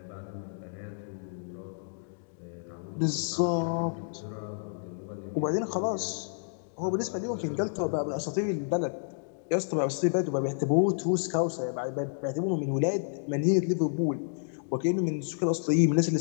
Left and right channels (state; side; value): silent; right; digital silence